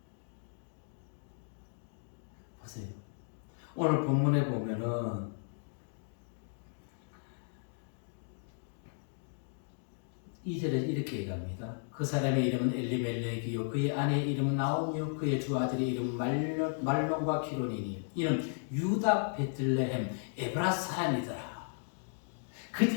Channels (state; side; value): silent; right; digital silence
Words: 보세요. 오늘 본문에 보면은 이절에 이렇게 얘기합니다. 그 사람의 이름은 엘리멜렉이요 그의 아내의 이름은 나오미요 그의 두 아들의 이름은 말론과 기론이니 이는 유다 베들레헴 에브라 사람이더라.